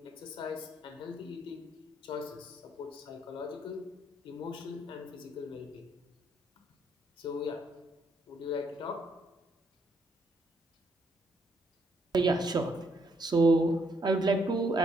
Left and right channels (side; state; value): both; normal; correlation 0.72